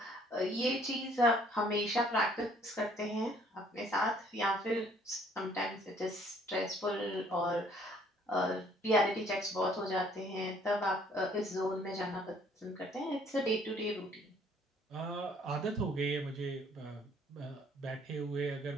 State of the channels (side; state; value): both; normal; correlation 0.61